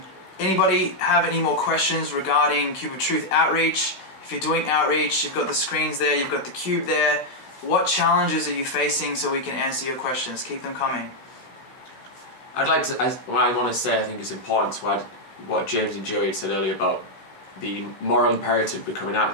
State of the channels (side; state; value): right; late; 16 ms